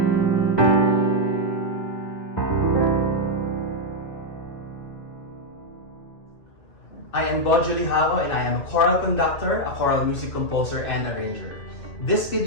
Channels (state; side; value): late; right; 2.6 ms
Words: I am Bojo Lijauco and I am a choral conductor, a choral music composer, and arranger. This